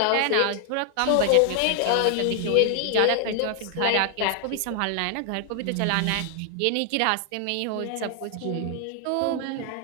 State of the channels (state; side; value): different; both; correlation 0.00